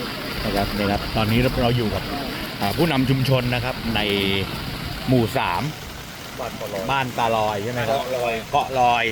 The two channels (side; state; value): both; identical; correlation 1.00